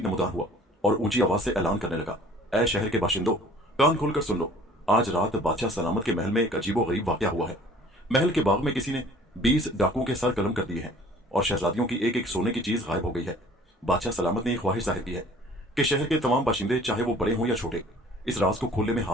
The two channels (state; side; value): normal; both; correlation 0.51